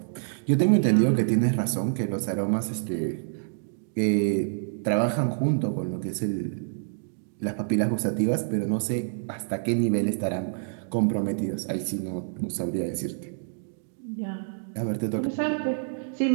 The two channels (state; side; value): silent; left; digital silence